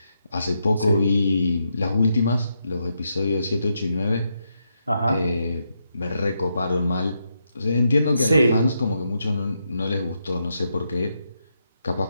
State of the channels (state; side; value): inverted; both; correlation -0.81